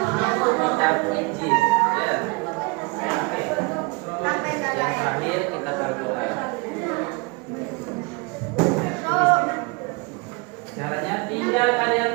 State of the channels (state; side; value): quieter; left; 27.9 dB